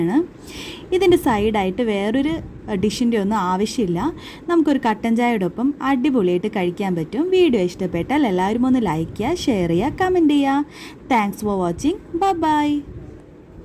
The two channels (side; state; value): both; identical; correlation 1.00